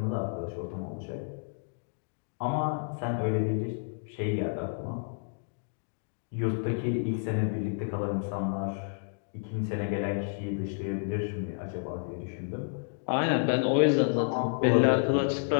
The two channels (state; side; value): silent; right; digital silence